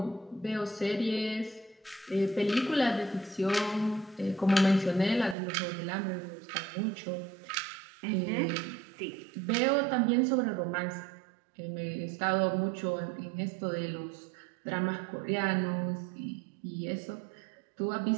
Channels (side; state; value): left; drops out; at 5.4 s